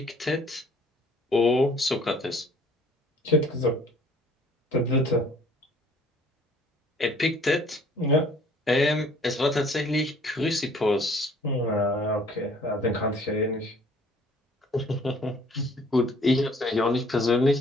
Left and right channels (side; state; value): both; normal; correlation 0.56